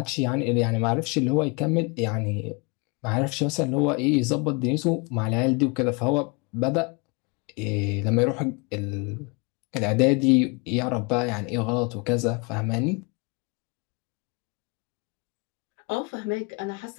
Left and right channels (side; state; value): right; quieter; 30.5 dB